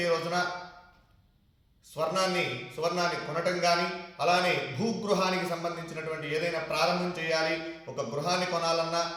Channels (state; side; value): identical; both; correlation 1.00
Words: రోజున సువర్ణాన్ని కొనటం కానీ, అలానే భూగృహానికి సంబంధించినటువంటి ఏదైనా ప్రారంభం చేయాలి, ఒక గృహాన్ని కొనాలన్నా,